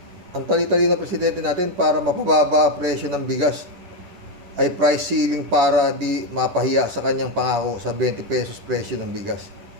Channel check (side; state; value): left; late; 10 ms